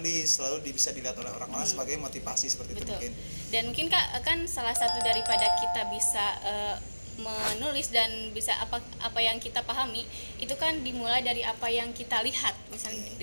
lalu bisa dilihat oleh orang-orang sebagai motivasi seperti itu mungkin. Dan mungkin kak kan salah satu daripada kita bisa menulis dan bisa apa yang kita pahami itu kan dimulai dari apa yang kita lihat, misalnya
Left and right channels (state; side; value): inverted; both; correlation -1.00